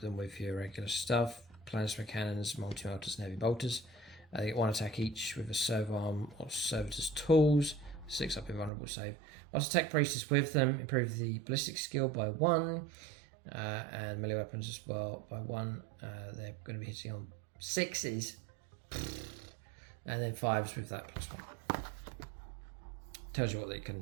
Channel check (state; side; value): drops out; left; at 8.7 s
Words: with your regular stuff, plasma cannons, multi-melters and heavy bolters. They get 1 attack each with a servo arm or Servitors tools, 6 up invulnerable save. Whilst Tech Priest is with them, improve the ballistic skill by 1, and melee weapons as well by 1. They're going to be hitting on 6s, and then 5s with that +1. tells you what they